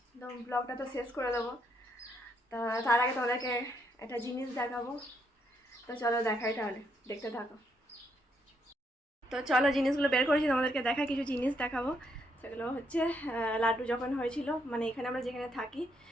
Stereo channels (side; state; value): both; normal; correlation 0.75